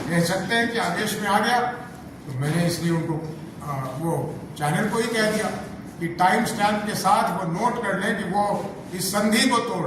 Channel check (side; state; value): both; identical; correlation 1.00